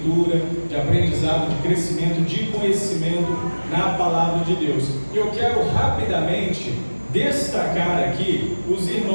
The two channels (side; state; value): both; inverted; correlation -1.00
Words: de aprendizado, de crescimento, de conhecimento na Palavra de Deus. E eu quero rapidamente destacar aqui os